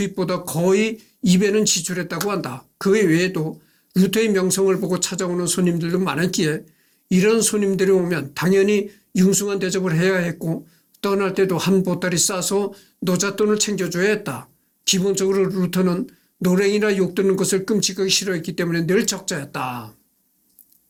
거의 2배는 지출했다고 한다. 그 외에도 루터의 명성을 보고 찾아오는 손님들도 많았기에 이런 손님들이 오면 당연히 융숭한 대접을 해야 했고 떠날 때도 한 보따리 싸서 노잣돈을 챙겨줘야 했다. 기본적으로 루터는 노랭이나 욕 듣는 것을 끔찍하게 싫어했기 때문에 늘 적자였다.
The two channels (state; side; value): identical; both; correlation 1.00